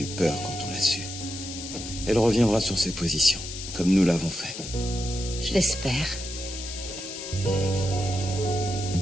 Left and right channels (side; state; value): left; noise; hiss, 9 dB below the sound